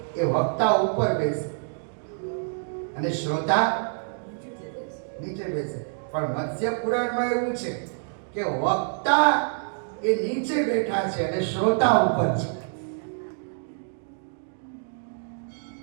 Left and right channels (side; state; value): left; silent; digital silence